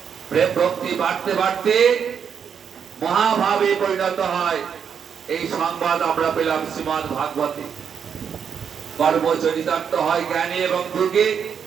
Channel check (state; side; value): quieter; left; 7.4 dB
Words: প্রেম ভক্তি বাড়তে বাড়তে মহাভাবে পরিণত হয়। এই সংবাদ আমরা পেলাম শ্রীমদ্ ভাগবতে। কর্ম চরিতার্থ হয় জ্ঞানে এবং যোগে,